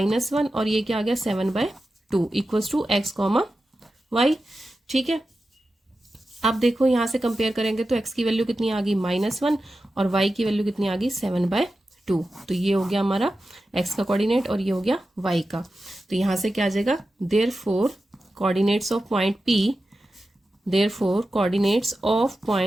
और ये क्या आ गया 7/2 equals to x comma y. ठीक है, अब देखो यहां से कंपेयर करेंगे तो x की वैल्यू कितनी आ गई -1 और y की वैल्यू कितनी आ गई 7/2, तो ये हो गया हमारा x का कोऑर्डिनेट और ये हो गया y का। तो यहां से क्या आ जाएगा, therefore coordinates of point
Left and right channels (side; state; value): both; normal; correlation 0.92